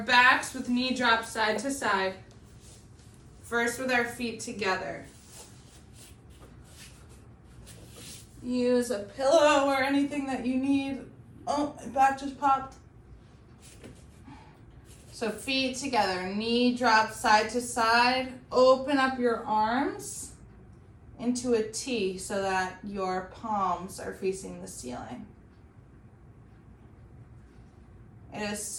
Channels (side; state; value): both; identical; correlation 1.00